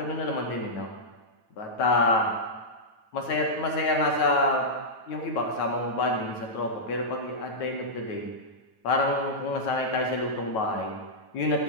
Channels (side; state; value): right; late; 9.2 ms